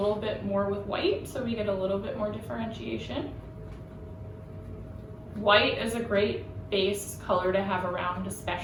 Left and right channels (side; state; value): both; identical; correlation 1.00